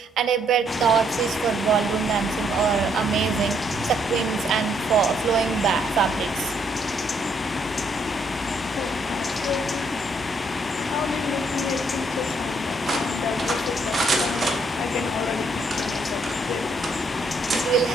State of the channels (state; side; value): normal; both; correlation 0.71